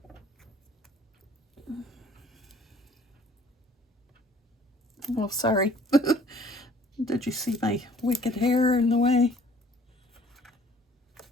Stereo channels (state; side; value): normal; both; correlation 0.55